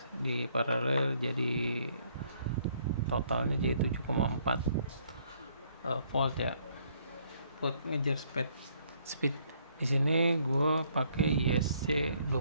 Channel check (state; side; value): inverted; both; correlation -0.66